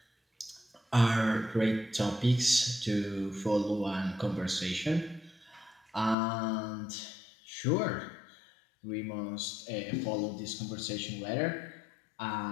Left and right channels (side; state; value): right; drops out; at 6.2 s